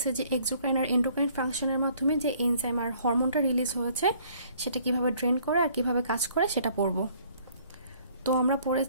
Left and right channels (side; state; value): both; inverted; correlation -0.60